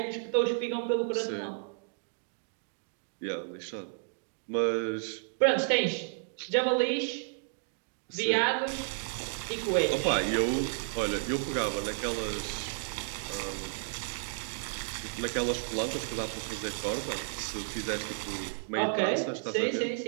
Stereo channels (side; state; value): left; silent; digital silence